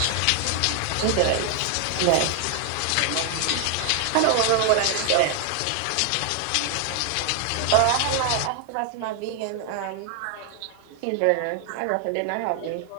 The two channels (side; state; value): both; different; correlation 0.00